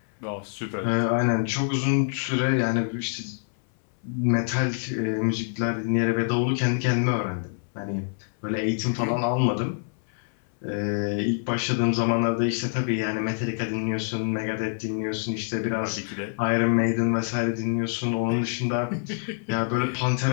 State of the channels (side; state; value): right; silent; 61 dB below the other